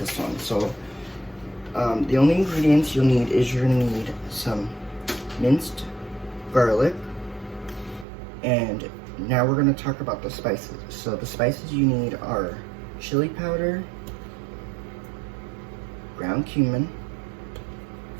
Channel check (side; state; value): left; drops out; at 8.1 s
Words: one. So the only ingredients you'll need is you're gonna need some minced garlic, and now we're gonna talk about the spices. So the spices you need are chili powder, ground cumin,